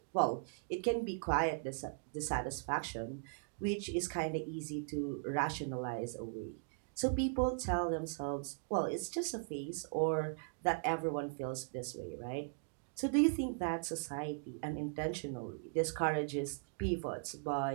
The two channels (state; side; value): silent; left; digital silence